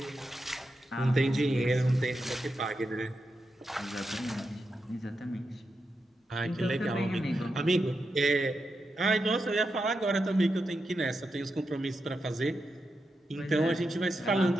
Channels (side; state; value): both; normal; correlation 0.87